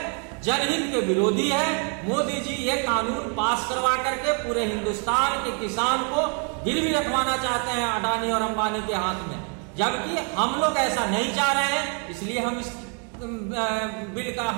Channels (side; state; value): left; quieter; 39.3 dB